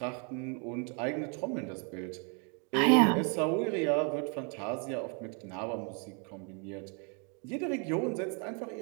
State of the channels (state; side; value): quieter; left; 37.3 dB